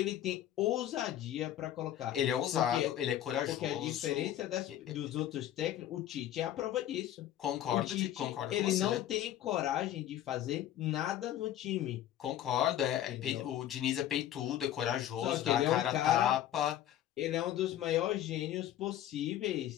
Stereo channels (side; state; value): right; quieter; 12.0 dB